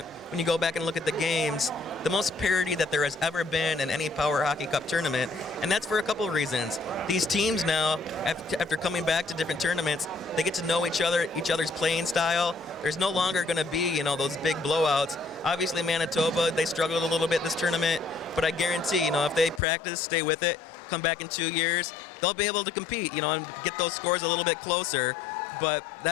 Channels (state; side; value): drops out; right; at 19.6 s